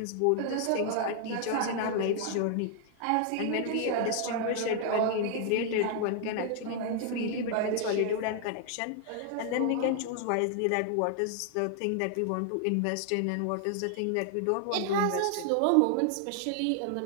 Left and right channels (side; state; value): both; different; correlation 0.00